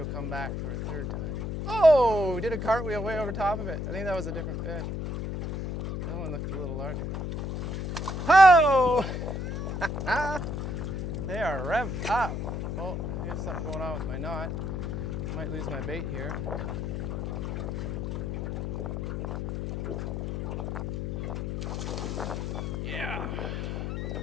come back for a third time. Oh, did a cartwheel way over top of it. I think that was a different fish. That one looked a little larger. Oh! They are revved up. Oh, I got something going on with my knot. Might lose my bait here. Yeah.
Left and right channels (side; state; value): left; noise; hum, 3 dB below the sound